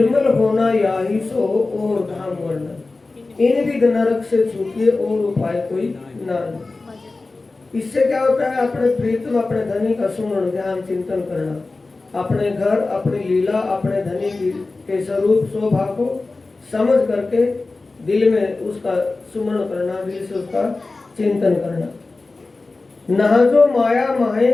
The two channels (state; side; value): quieter; right; 3.5 dB